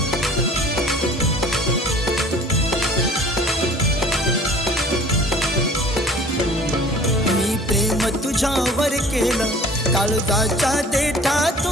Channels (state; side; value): normal; both; correlation 0.49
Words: तुझ्यावर केलं काळजाच्या